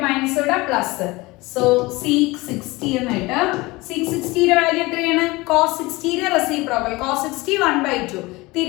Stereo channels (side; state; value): right; quieter; 22.1 dB